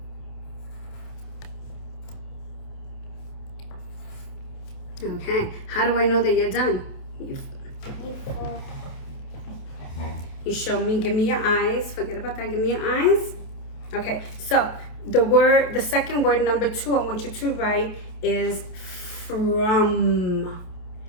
Okay, how do I know that you're done? You show me, give me your eyes. Forget about that, give me your eyes. Okay, so the second word, number 2, I want you to write is from.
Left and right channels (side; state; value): right; late; 28 ms